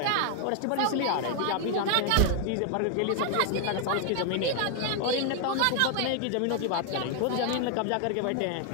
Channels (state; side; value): different; both; correlation 0.00